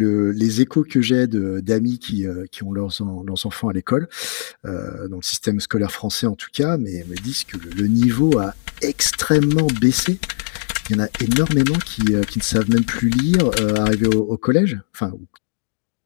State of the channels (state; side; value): silent; right; digital silence